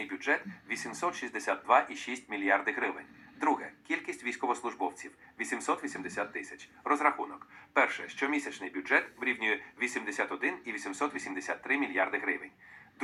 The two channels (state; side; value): identical; both; correlation 1.00